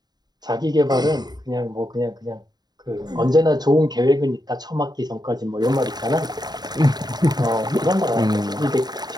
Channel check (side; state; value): left; late; 0.20 ms